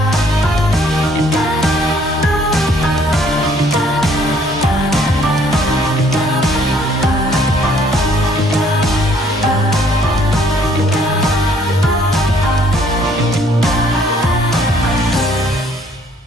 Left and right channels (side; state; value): both; normal; correlation 0.62